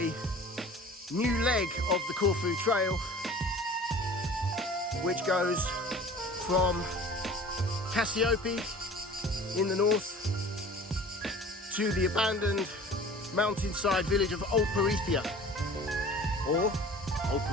new leg of the Corfu trail which goes from Kassiopi in the north to the abandoned mountainside village of Old Peritheia, or Old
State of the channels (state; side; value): normal; both; correlation 0.44